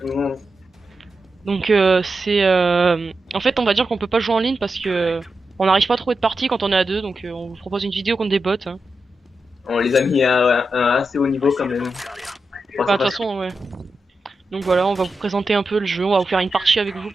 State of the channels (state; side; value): normal; both; correlation 0.89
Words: le monde. Donc en fait on va dire qu'on peut pas jouer en ligne parce que on n'arrive pas à trouver de partie quand on est à deux. Donc on vous propose une vidéo contre des bots, hein. On les a mis à un assez haut niveau quand même. Enfin de toute façon ouais. Donc voilà, on va vous présenter un peu le jeu, on va vous faire une partie avec vous